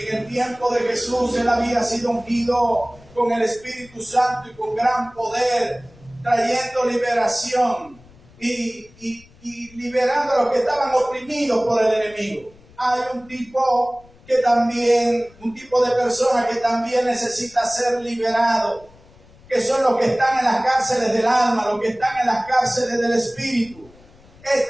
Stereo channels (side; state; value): left; noise; rumble, 26 dB below the sound